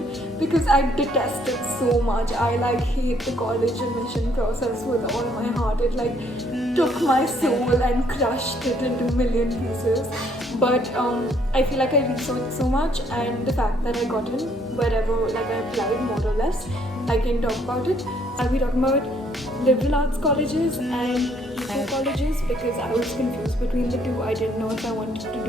because I detest it so much. I hate the college admission process with all my heart. It took my soul and crushed it into a million pieces. But I feel like I researched so much, and the fact that I got in wherever I applied more or less, I can talk about it. I'll be talking about liberal arts colleges and eco colleges because I was confused between the two. I didn't know if I wanted to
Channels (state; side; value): normal; both; correlation 0.66